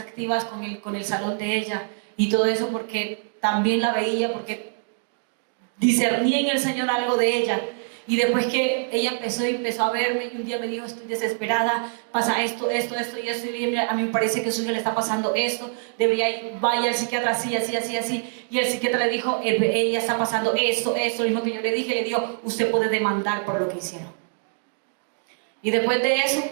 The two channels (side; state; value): left; silent; 62 dB below the other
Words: con el salón de ella. Y todo eso porque también la veía, porque discerní en el Señor algo de ella. Y después que ella empezó a verme, y un día me dijo, estoy desesperada, pasa esto y esto, y a mí me parece que a su hija le está pasando esto, debería ir, vaya al psiquiatra así. Y el psiquiatra le dijo, ella está pasando esto, lo mismo que yo le dije, le dijo, usted puede demandar por lo que hicieron. Y después de eso,